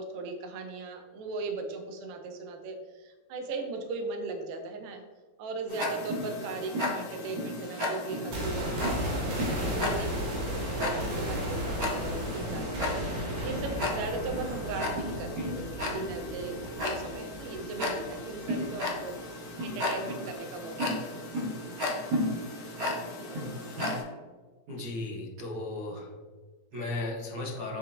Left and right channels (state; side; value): late; left; 17 ms